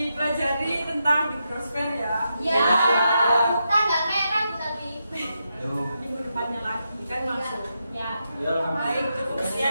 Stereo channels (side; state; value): both; inverted; correlation -0.85